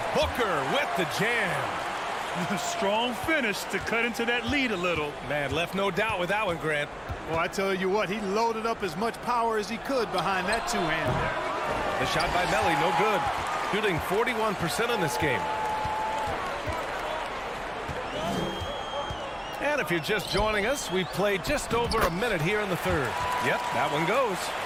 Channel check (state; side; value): identical; both; correlation 1.00